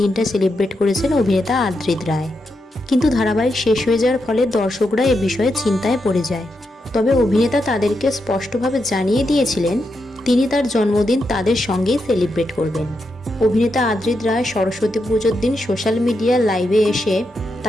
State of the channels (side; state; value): both; normal; correlation 0.84